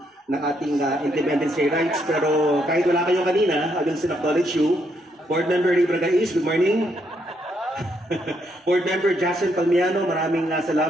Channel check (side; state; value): both; normal; correlation 0.75